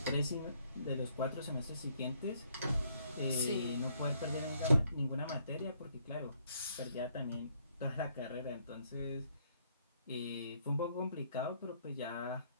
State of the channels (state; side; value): inverted; both; correlation -0.69